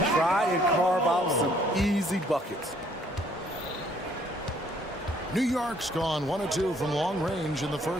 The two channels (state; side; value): normal; both; correlation 0.63